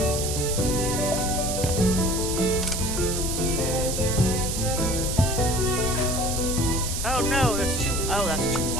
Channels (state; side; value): noise; right; hiss, 3 dB below the sound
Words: Oh no, that's too. Oh, that's too